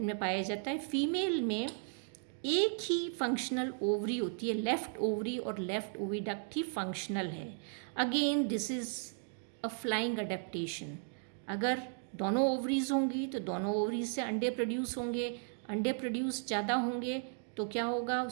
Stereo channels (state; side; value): silent; left; 54 dB below the other